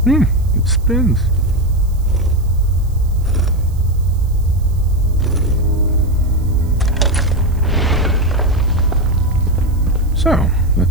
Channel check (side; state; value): right; noise; hiss, 27 dB below the sound